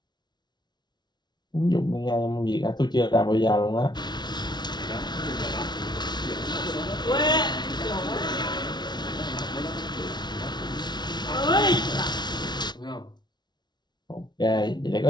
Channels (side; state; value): right; late; 0.20 ms